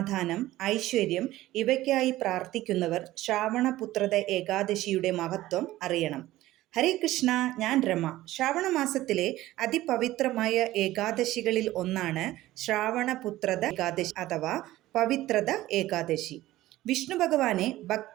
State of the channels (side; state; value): left; quieter; 16.0 dB